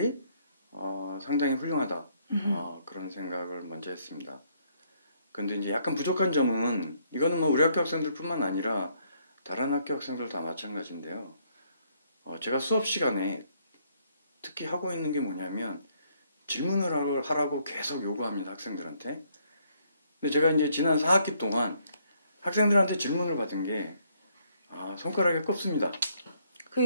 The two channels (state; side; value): inverted; both; correlation -0.70